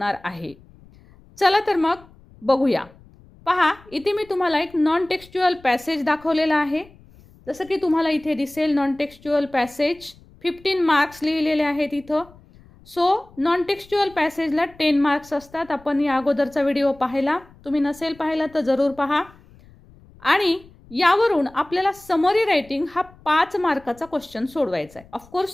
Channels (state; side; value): noise; left; rumble, 25 dB below the sound